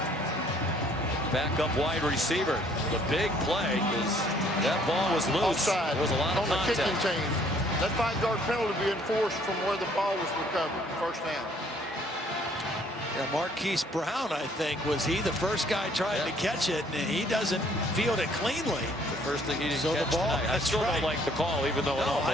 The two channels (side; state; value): both; normal; correlation 0.61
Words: Back up wide receiver. The big play because that ball was loose. Offside. There was a lot of on the contact. kicking team. That 5-yard penalty be enforced from where the ball was recovered. First down. Yeah, Marquise Brown, I think, was he the first guy trying to catch it, and he doesn't field it cleanly. The first thing he didn't so catch the ball, tonight. I still don't like the call, even though it almost